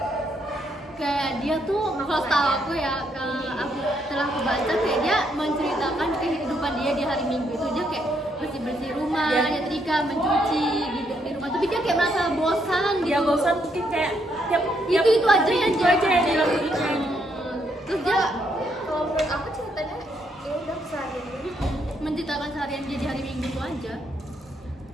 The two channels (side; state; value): both; normal; correlation 0.74